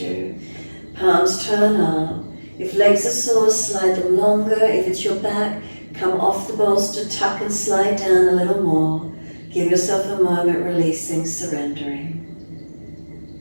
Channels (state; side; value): inverted; both; correlation -1.00